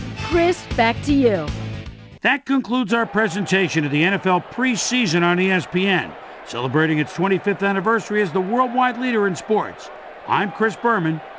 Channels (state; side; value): identical; both; correlation 1.00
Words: Chris, back to you. That concludes our presentation of the NFL preseason on ESPN, celebrating its 25th anniversary as the worldwide leader in sports. I'm Chris Berman.